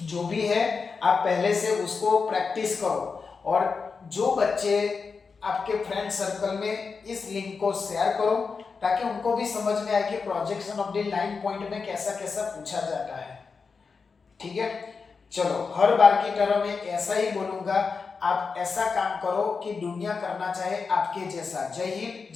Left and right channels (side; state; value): right; quieter; 5.0 dB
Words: जो भी है आप पहले से उसको प्रैक्टिस करो। और जो बच्चे आपके फ्रेंड सर्कल में इस लिंक को शेयर करो ताकि उनको भी समझ में आए कि projection of the line point में कैसा कैसा पूछा जाता है। ठीक है, चलो हर बार की तरह मैं ऐसा ही बोलूंगा, आप ऐसा काम करो कि दुनिया करना चाहे आपके जैसा। जय हिंद,